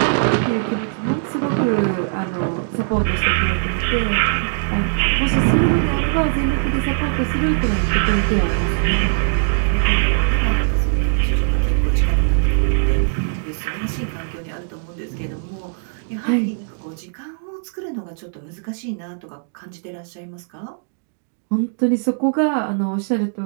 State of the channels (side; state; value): left; silent; digital silence